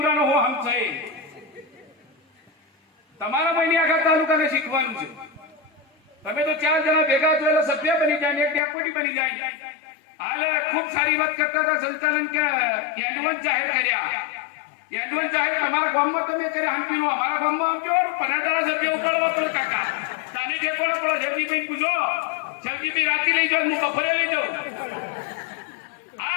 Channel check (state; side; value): drops out; right; at 8.6 s